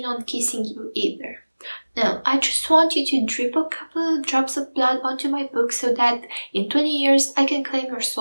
on kissing you either. No, I just want you to drip a couple of drops of blood onto my book so that in 20 years I can claim your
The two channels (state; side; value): inverted; both; correlation -1.00